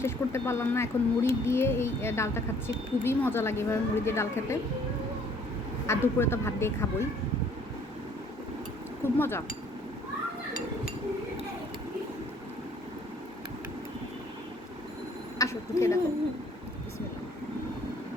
শেষ করতে পারলাম না, এখন মুড়ি দিয়ে এই ডালটা খাচ্ছি। খুবই মজা লাগে এভাবে মুড়ি দিয়ে ডাল খেতে। আর দুপুরে তো ভাত দিয়ে খাবোই, খুব মজা। আসো একটু খেয়ে দেখো। বিসমিল্লাহ।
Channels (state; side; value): normal; both; correlation 0.59